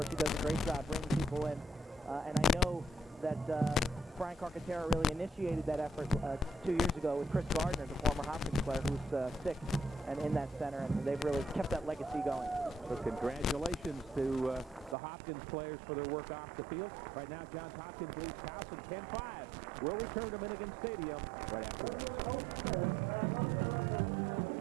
She does a great job bringing people in. And I know that Brian Carcaterra really initiated that effort 2 years ago with Chris Gardner, the former Hopkins player, who's sick and in that center, and they've really kept that legacy going. So congratulations to the Hopkins players for their work off the field. Right now, Johns Hopkins leads Towson 10-5. We'll return to Minnigan Stadium right after this.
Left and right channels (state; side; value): drops out; left; at 15.0 s